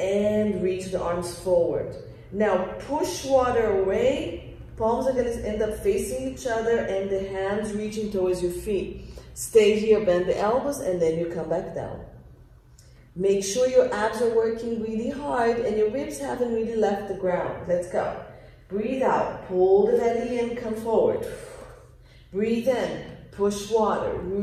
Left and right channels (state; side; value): identical; both; correlation 1.00